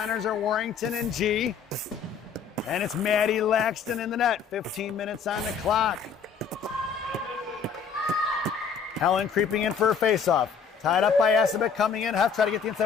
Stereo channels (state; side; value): quieter; right; 6.3 dB